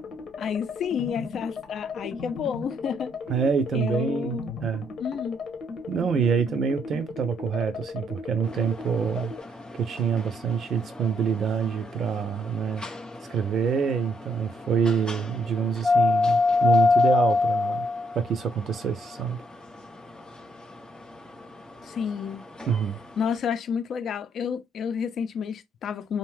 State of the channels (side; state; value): both; normal; correlation 0.72